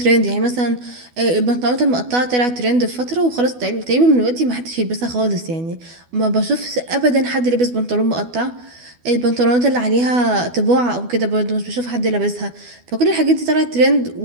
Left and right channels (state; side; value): late; left; 12 ms